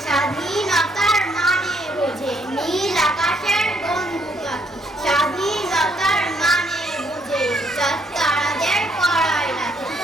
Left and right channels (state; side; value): normal; both; correlation 0.69